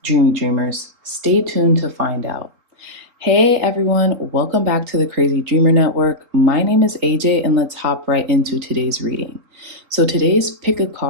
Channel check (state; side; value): late; left; 3.9 ms